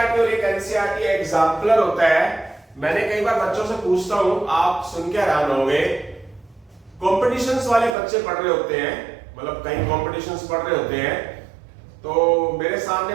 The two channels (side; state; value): left; drops out; at 8.0 s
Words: और एक एनसीईआरटी एग्जाम्पलर होता है। मैंने कई बार बच्चों से पूछता हूं, आप सुन के हैरान होंगे, कॉम्पिटिशंस वाले बच्चे पढ़ रहे होते हैं, मतलब कहीं कॉम्पिटिशंस पढ़ रहे होते हैं, तो मेरे